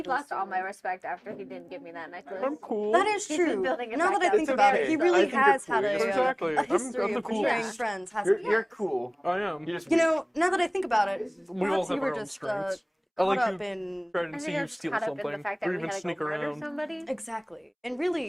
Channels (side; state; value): both; identical; correlation 1.00